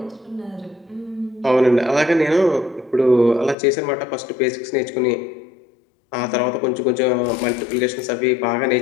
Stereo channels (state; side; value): drops out; right; at 3.6 s